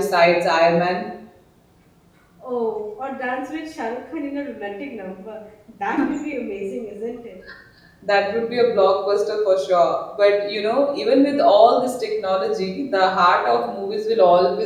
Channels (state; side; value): identical; both; correlation 1.00